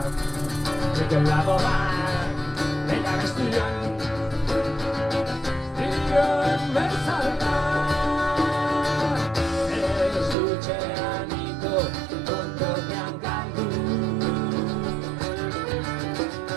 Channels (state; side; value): drops out; left; at 10.4 s